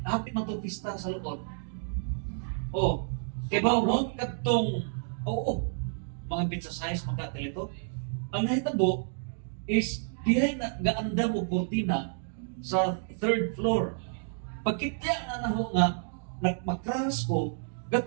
happy man itong pista sa loob. Oh, kay ba mo katong, oo, mga pizza size, mga katilito. Ang nahitabo is, dihay na gaanda mo kortina sa third floor. Pagkitya na naho nga, nagmakras ko,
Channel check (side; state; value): left; silent; digital silence